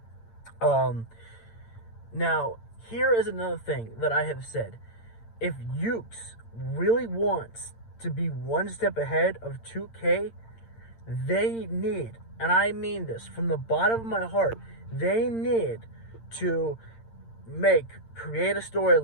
Now, here is another thing that I have said. If Ukes really wants to be one step ahead of 2K, they need, and I mean this from the bottom of my heart, they need to create a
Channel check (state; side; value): late; right; 8.8 ms